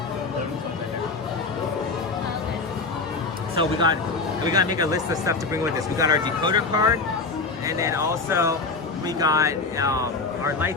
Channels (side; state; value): right; quieter; 4.0 dB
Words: So we gotta make a list of stuff to bring with us. We got our decoder card, and then also we got our